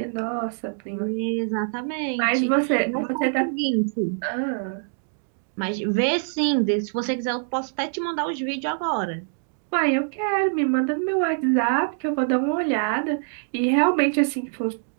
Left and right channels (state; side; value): silent; left; digital silence